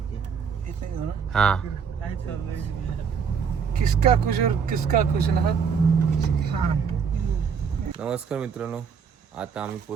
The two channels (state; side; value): quieter; left; 6.5 dB